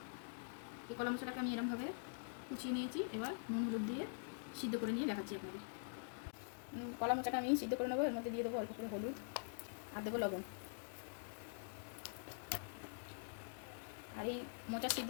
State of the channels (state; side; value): silent; right; digital silence